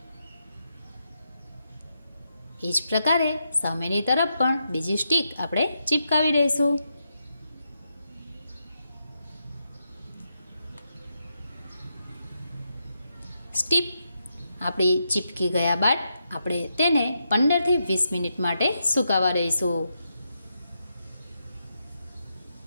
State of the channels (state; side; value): inverted; both; correlation -0.84